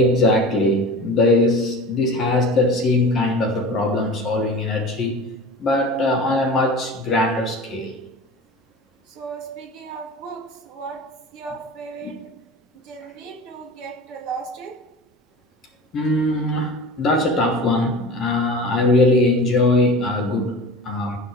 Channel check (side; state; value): both; normal; correlation 0.35